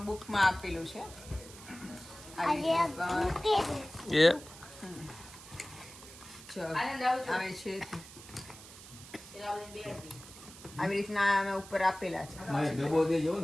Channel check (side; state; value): right; noise; hiss, 17 dB below the sound